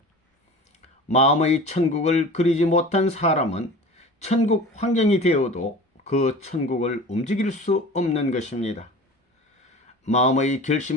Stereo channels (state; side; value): normal; both; correlation 0.38